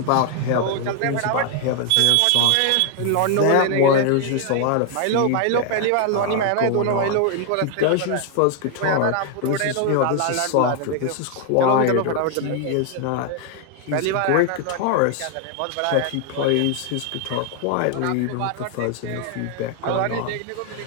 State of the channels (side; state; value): both; different; correlation 0.00